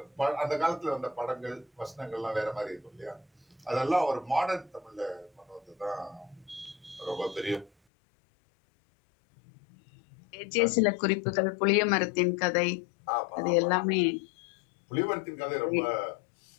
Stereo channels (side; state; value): right; drops out; at 7.7 s